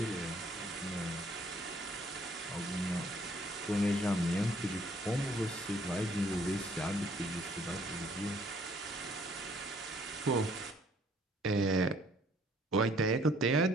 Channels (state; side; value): normal; both; correlation 0.62